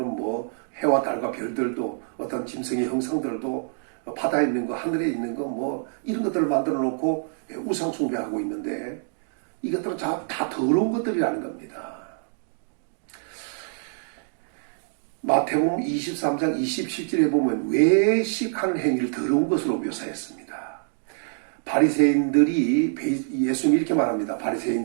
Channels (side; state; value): left; silent; digital silence